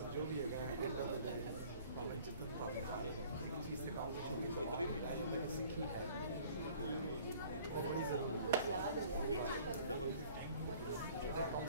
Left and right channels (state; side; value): inverted; both; correlation -0.52